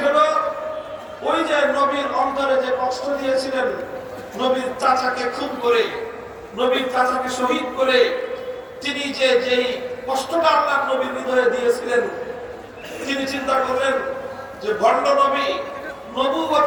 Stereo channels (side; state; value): both; identical; correlation 1.00